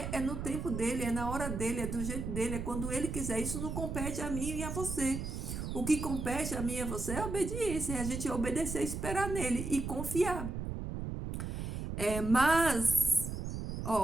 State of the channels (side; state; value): right; noise; rumble, 4 dB below the sound